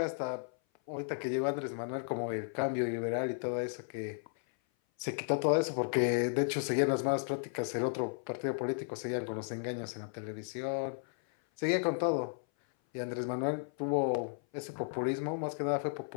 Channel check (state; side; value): silent; right; 55 dB below the other